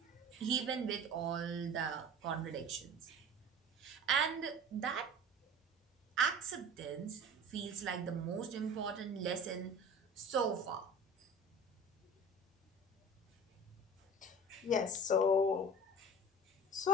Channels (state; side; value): normal; both; correlation 0.38